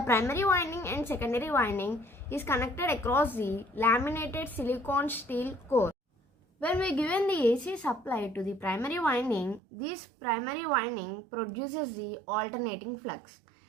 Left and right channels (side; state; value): left; drops out; at 9.6 s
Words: winding and secondary winding is connected across the laminated silicon steel core. When we given the AC supply to the primary winding, this primary winding produces the alternating flux.